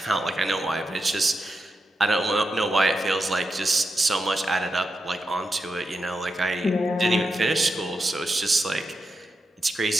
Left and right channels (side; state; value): both; normal; correlation 0.87